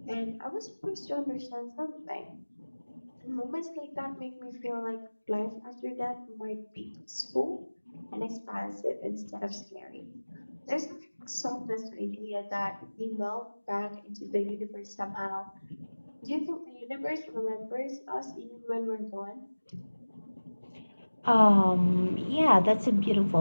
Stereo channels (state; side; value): inverted; both; correlation -1.00